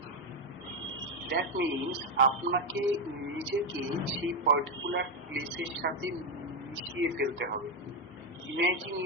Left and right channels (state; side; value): normal; both; correlation 0.07